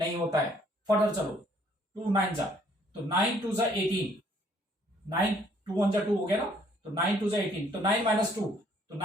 होता है. फर्दर चलो 2 9 जा, तो 9 2 जा 18, 9 2 1 जा 2 हो गया ना, तो 9 2 जा 18, तो 9 माइनस 2, तो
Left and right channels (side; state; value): both; normal; correlation 0.63